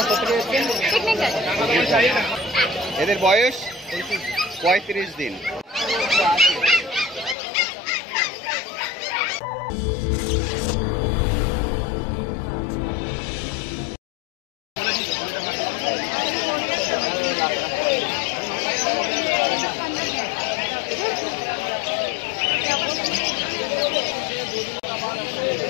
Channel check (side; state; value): right; drops out; at 7.4 s